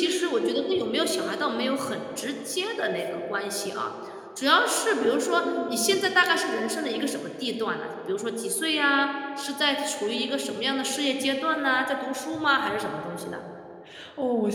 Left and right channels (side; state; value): both; identical; correlation 1.00